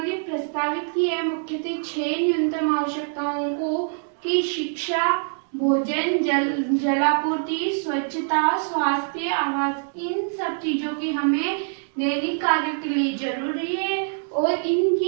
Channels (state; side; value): silent; left; digital silence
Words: प्रस्तावित किया है मुख्यतः 6 न्यूनतम आवश्यकताओं को कि शिक्षा, भोजन, जलापूर्ति, स्वच्छता, स्वास्थ्य, आवास, इन सब चीजों की हमें दैनिक कार्य के लिए जरूरी है और